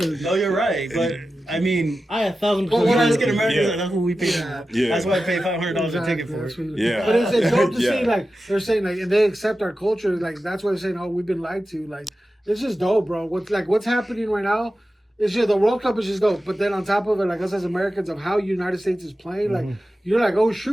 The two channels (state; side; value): normal; both; correlation 0.93